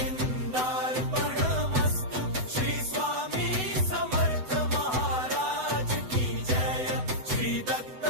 विंदार्पणमस्तु। श्री स्वामी समर्थ महाराज की जय, श्री दत्त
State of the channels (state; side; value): late; left; 7.9 ms